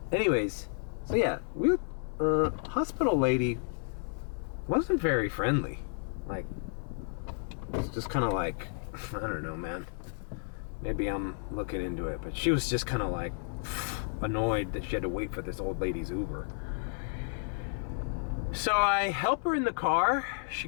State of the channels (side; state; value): right; silent; digital silence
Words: Anyways, so yeah, hospital lady wasn't very friendly. Like, it's just kind of like, I don't know, man. Maybe I'm looking into it, but she was just kind of like annoyed that she had to wait for this old lady's Uber. So I help her in the car.